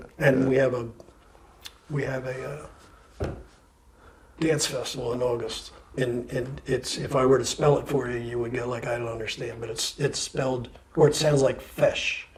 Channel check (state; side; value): identical; both; correlation 1.00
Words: And we have a dance festival in August, and it's, if I were to spell it for you, you would go like, I don't understand, but it's spelled, or it sounds like fish,